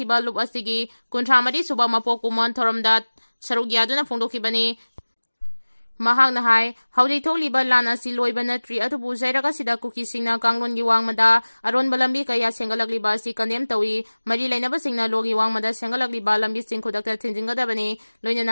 lup asigi kuntramadi suba mapok kumon thoramda saruk yaduna phongdokibani. Mahakna hai hawjik thokliba lan asi loiba natri atubu zairaga sida Kuki singna kanglongi wangmada aronba lambi kaya senggalakliba asi kandem tawi mari lainaba singna logi wangmada senggalakliba lambi sing khudakta thinjingadabani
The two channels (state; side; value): inverted; both; correlation -1.00